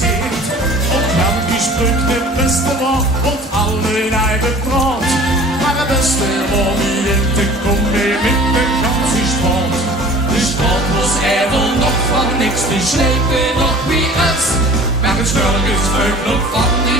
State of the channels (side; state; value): both; normal; correlation 0.45